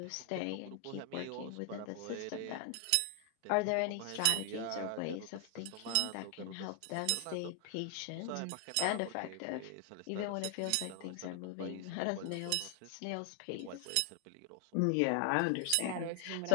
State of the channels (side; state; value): both; different; correlation 0.00